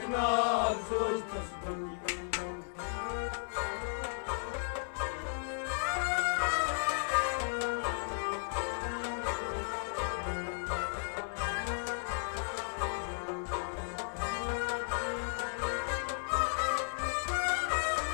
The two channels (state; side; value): silent; right; 55 dB below the other